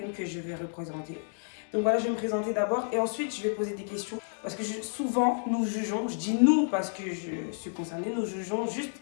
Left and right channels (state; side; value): silent; right; digital silence